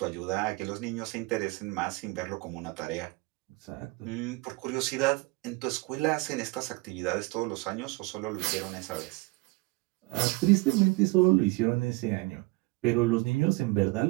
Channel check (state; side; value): quieter; left; 24.0 dB